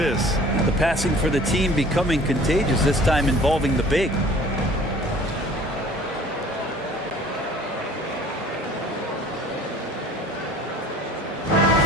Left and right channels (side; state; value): both; normal; correlation 0.49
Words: The passing for the team becoming contagious, this time involving the big.